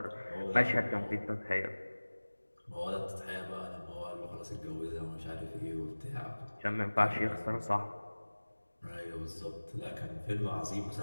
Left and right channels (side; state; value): both; inverted; correlation -1.00